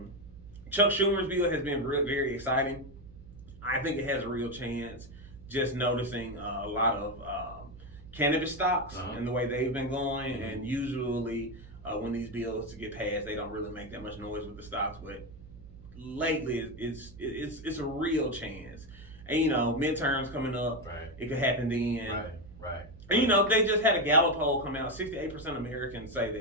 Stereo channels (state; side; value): noise; right; hum, 18 dB below the sound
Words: Chuck Schumer's bill has been very exciting. I think it has a real chance. Just noticing a lot of cannabis stocks and the way they've been going, and usually when these bills get passed, they don't really make that much noise with the stocks. But lately, it's a real chance. And midterms coming up, it could happen then. Right. And they just had a Gallup poll come out. 68% of Americans say